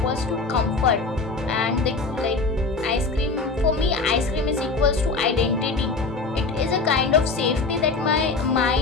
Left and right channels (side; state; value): right; quieter; 3.9 dB